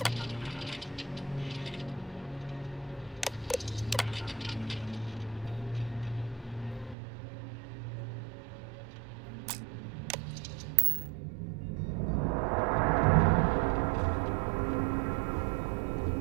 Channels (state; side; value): drops out; left; at 7.0 s